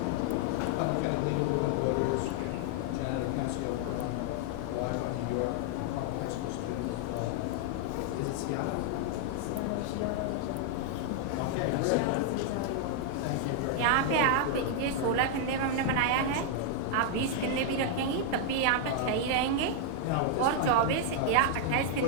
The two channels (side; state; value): both; different; correlation 0.00